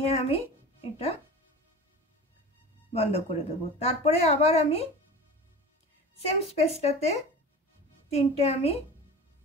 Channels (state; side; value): normal; both; correlation 0.35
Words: আমি এটা বন্ধ করে দেবো। তারপরে আবার আমি সেম স্পেসটাতে 3টে আমি